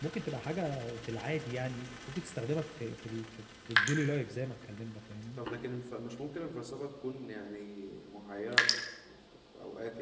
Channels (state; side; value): identical; both; correlation 1.00